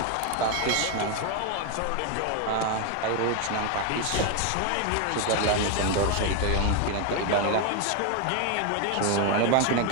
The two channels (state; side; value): different; both; correlation 0.01